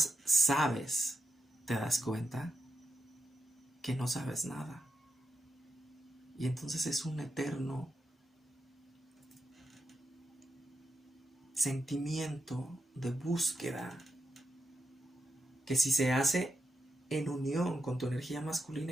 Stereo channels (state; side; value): normal; both; correlation 0.86